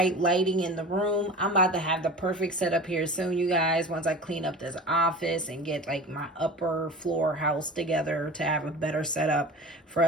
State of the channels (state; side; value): normal; both; correlation 0.36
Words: lighting in the room. I'm about to have the perfect setup here soon, you guys, once I clean up this office and get like my upper floor house together to have a better setup for